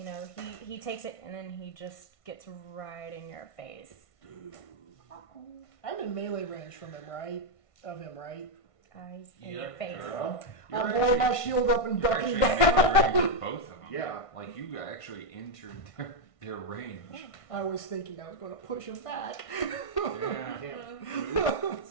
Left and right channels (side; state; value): right; late; 1.5 ms